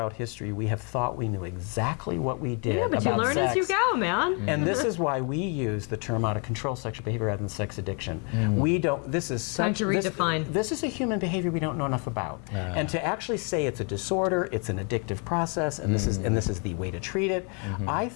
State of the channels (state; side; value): quieter; right; 36.4 dB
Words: history we have thought we knew exactly what we did Yeah, but about you learn sex. as you go, man. And this is why we use the term out of control sexual behavior rather than sex addiction. We don't, this is such, to redefine. This is a human behavior we don't know enough about. And to actually say it's a disorder, it's an addictive process, and this is the way to treat it, I